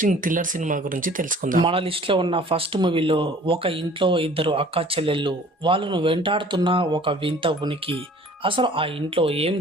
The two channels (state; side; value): normal; both; correlation 0.50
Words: thriller cinema గురించి తెలుసుకుందాం. మన లిస్ట్లో ఉన్న ఫస్ట్ మూవీలో ఒక ఇంట్లో ఇద్దరు అక్క చెల్లెళ్ళు, వాళ్ళను వెంటాడుతున్న ఒక వింత ఉనికి. అసలు ఆ ఇంట్లో ఏం